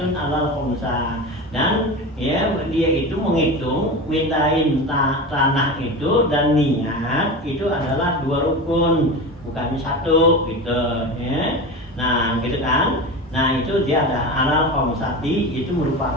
alal khumsa, dan ya dia itu menghitung mintain tanah itu dan niat itu adalah 2 rukun, bukannya 1 gitu, ya. Nah gitu kan. Nah itu dia ada alal khomsati, itu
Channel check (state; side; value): normal; both; correlation 0.27